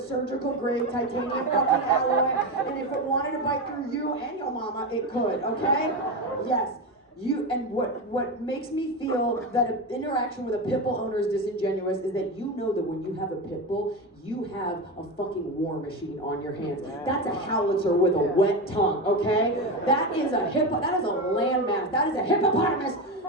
grade titanium fucking alloy, and if it wanted to bite through you and your mama, it could, okay? Yes. And what makes me feel that an interaction with a pit bull owner is disingenuous is that you know that when you have a pit bull, you have a fucking war machine on your hands. That's a howitzer with a wet tongue, okay? That is a landmass. That is a hippopotamus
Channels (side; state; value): both; normal; correlation 0.18